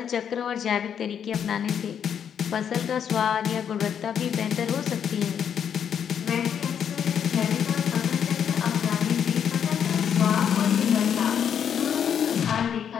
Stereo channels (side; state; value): right; quieter; 8.3 dB